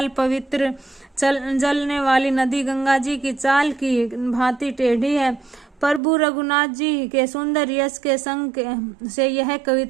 पवित्र जलने वाली नदी गंगा जी की चाल की भांति टेढ़ी है। प्रभु रघुनाथ जी के सुंदर यश के संग से यह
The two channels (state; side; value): drops out; left; at 6.0 s